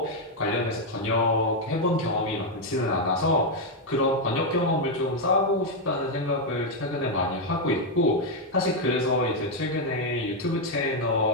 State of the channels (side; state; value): both; normal; correlation 0.02